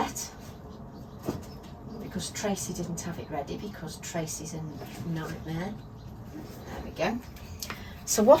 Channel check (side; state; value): both; identical; correlation 1.00